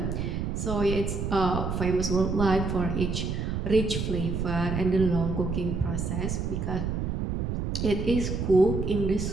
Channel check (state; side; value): noise; right; rumble, 2 dB below the sound